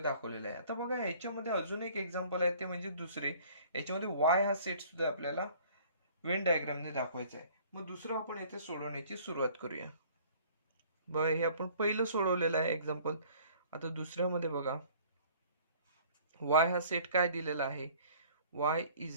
दाखवलेला आहे. आता बघा याच्यामध्ये अजून एक एक्झाम्पल आहे, ते म्हणजे दुसरे. याच्यामध्ये वाय हा सेट सुद्धा आपल्याला वेन डायग्रामने दाखवायचा आहे. मग दुसरं आपण इथे सोडवण्याची सुरुवात करूया. बघा हे आपण पहिलं सोडवलेलं आहे एक्झाम्पल. आता दुसऱ्यामध्ये बघा, वाय हा सेट काय दिलेला आहे, y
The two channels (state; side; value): inverted; both; correlation -0.52